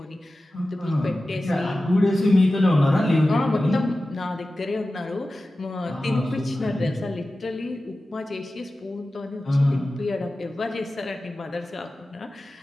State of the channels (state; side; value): normal; both; correlation 0.95